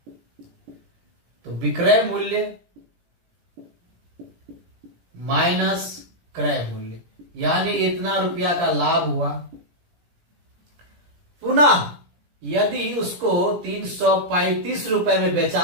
तो विक्रय मूल्य माइनस क्रय मूल्य, यानी इतना रुपया का लाभ हुआ। पुनः यदि उसको 335 रुपए में बेचा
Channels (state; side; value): late; left; 17 ms